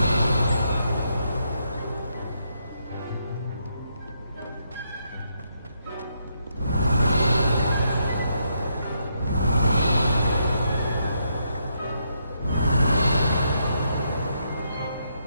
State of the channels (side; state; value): both; inverted; correlation -0.78